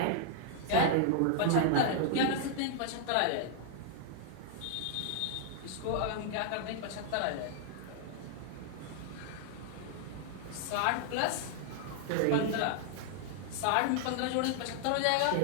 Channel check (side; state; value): both; different; correlation -0.01